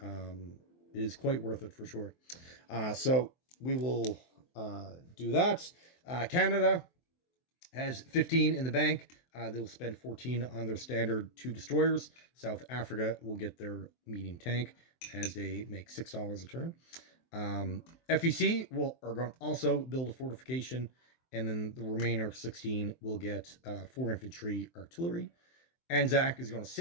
it is quite worth it for sure. So we will do that. Canada has 15 in the bank. They'll spend 14 on their standard 2 destroyers. South Africa will get their medium tank as they make $6 a turn. FEC are going to also build a fortification, and then the remainder 16 will get 4 infantry artillery. Anzac is going to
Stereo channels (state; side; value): late; right; 23 ms